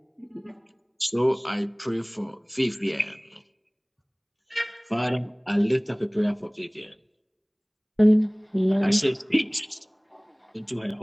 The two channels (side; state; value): both; identical; correlation 1.00